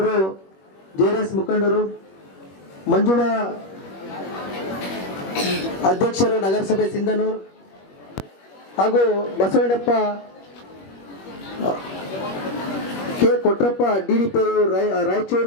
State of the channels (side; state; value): right; late; 21 ms